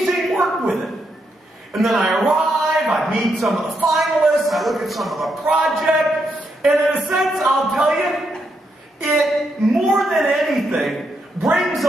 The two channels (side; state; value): both; normal; correlation 0.80